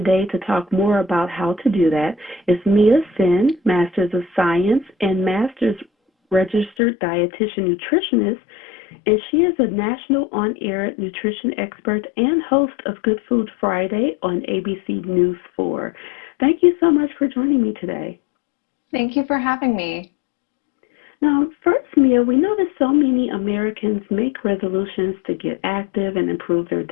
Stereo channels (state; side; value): drops out; right; at 6.7 s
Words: to talk more about how to do that is Mia Sin, Master's of Science and Master's Registered Dietitian Nutritionist, and she is a national on-air nutrition expert and host of Good Food Friday on ABC News 4. Thank you so much for joining me today. Thank you for having me. Now, first, Mia, we know that so many Americans make resolutions to get active and improve their